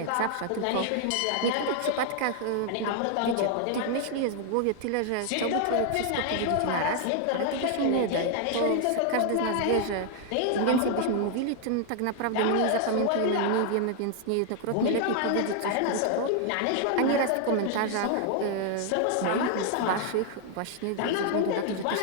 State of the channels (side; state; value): both; different; correlation 0.00